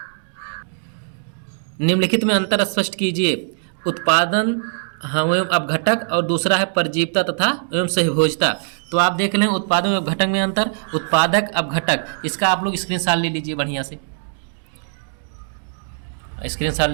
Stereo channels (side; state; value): left; silent; digital silence